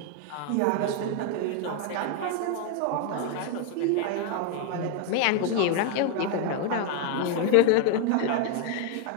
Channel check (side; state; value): both; different; correlation 0.01